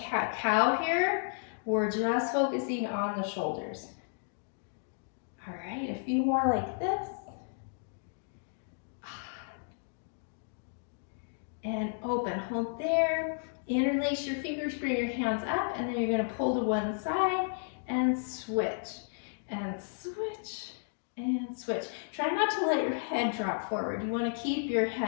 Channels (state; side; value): silent; right; digital silence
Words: here. We're just focusing on the shoulders. All right, a few more like this. And open, hold there. Interlace your fingers, bring your hands up, and then you're going to pull to one side and switch, and switch, and switch. Try not to let your head drop forward. You want to keep your